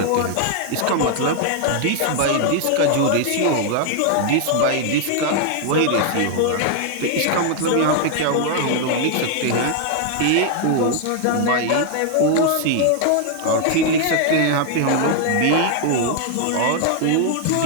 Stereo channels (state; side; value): different; both; correlation 0.00